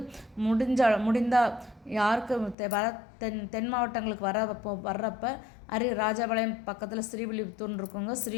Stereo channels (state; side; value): drops out; right; at 2.6 s